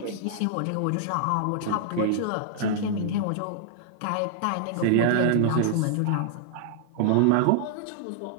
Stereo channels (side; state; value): both; different; correlation -0.01